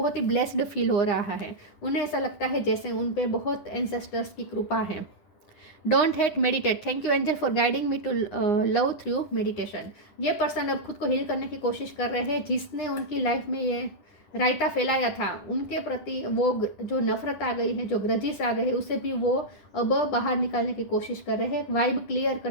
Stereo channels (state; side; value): late; right; 10 ms